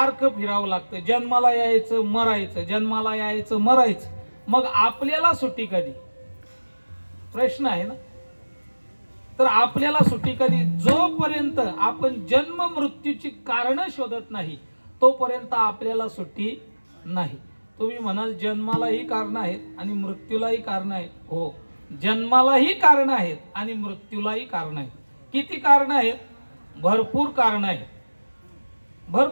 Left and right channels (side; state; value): both; inverted; correlation -1.00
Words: फिरावं लागतं. जन्माला यायचं मरायचं, जन्माला यायचं मरायचं. मग आपल्याला सुट्टी कधी? प्रश्न आहे ना. तर आपल्याला सुट्टी कधी? जोपर्यंत आपण जन्म मृत्यूची कारण शोधत नाही तोपर्यंत आपल्याला सुट्टी नाही. तुम्ही म्हणाल जन्मालाही कारण आहेत आणि मृत्यूलाही कारण आहेत. हो, जन्मालाही कारण आहेत आणि मृत्यूलाही कारण आहेत. किती कारण आहेत? भरपूर कारण आहेत,